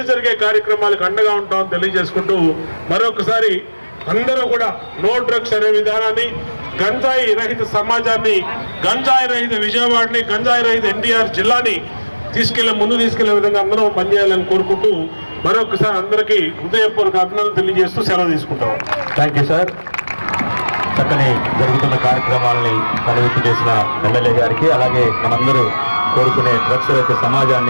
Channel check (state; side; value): inverted; both; correlation -1.00